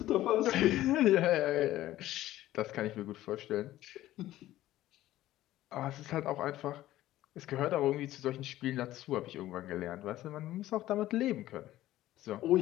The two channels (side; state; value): right; quieter; 14.8 dB